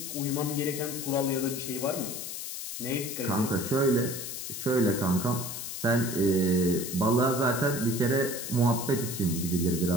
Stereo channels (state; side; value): noise; left; hiss, 7 dB below the sound